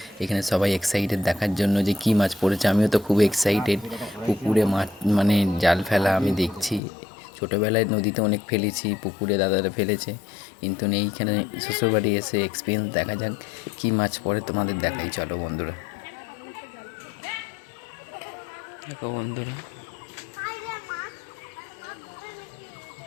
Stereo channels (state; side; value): drops out; right; at 6.8 s